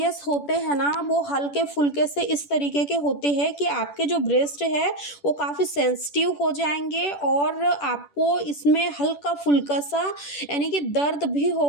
होते हैं ना, वो हल्के फुल्के से इस तरीके के होते हैं कि आपके जो ब्रेस्ट है वो काफ़ी सेंसिटिव हो जाएंगे, और आपको इसमें हल्का फुल्का सा यानी कि दर्द भी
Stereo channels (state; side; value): late; right; 10 ms